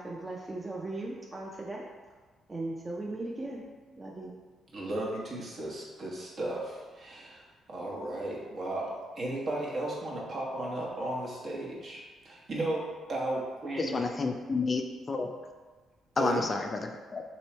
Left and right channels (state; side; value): normal; both; correlation 0.80